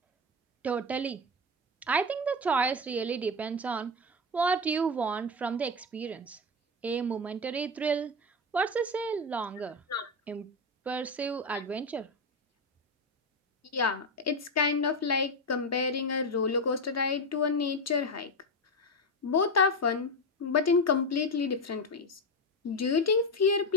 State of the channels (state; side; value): normal; both; correlation 0.13